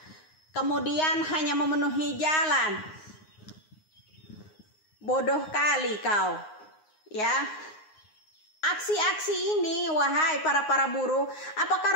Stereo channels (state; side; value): late; right; 9.6 ms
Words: kemudian hanya memenuhi jalan? Bodoh kali kau ya. Aksi-aksi ini, wahai para buruh,